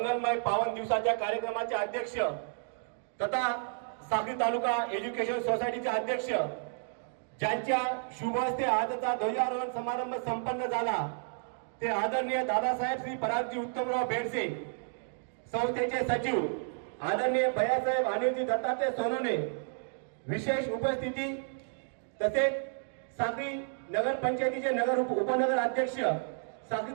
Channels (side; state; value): left; silent; digital silence